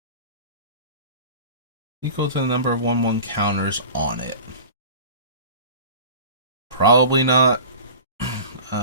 Equal to the number of 1/1 counters on it. Probably not.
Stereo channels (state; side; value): inverted; both; correlation -0.37